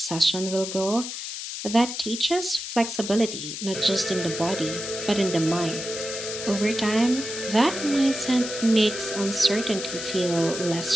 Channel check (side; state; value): left; noise; hiss, 7 dB below the sound